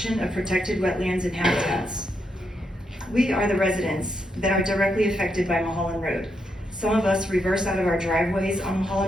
of protected wetlands and habitats. We are the residents that are directly affected by Mulholland Road. Some of us reverse out of our driveways on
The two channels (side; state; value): both; normal; correlation 0.81